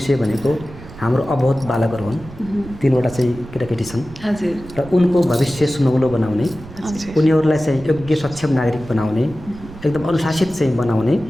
भनेको हाम्रो अबोध बालकहरू हुन्। 3वटा चाहिँ केटाकेटी छन् र उनको भविष्य सुनौलो बनाउने, उनीहरूलाई चाहिँ योग्य सक्षम नागरिक बनाउने, एकदम अनुशासित चाहिँ बनाउने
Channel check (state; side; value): noise; right; rumble, 16 dB below the sound